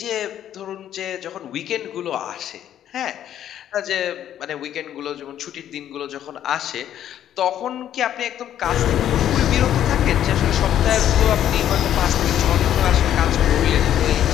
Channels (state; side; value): quieter; right; 10.9 dB